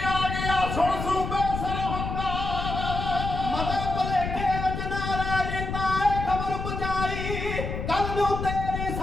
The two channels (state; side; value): noise; left; rumble, 4 dB below the sound